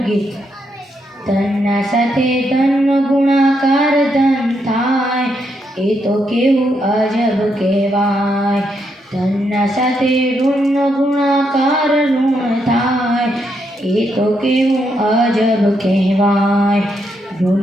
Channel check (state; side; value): normal; both; correlation 0.79